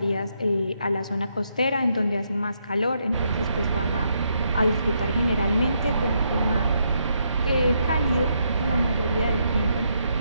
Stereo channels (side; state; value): both; inverted; correlation -0.77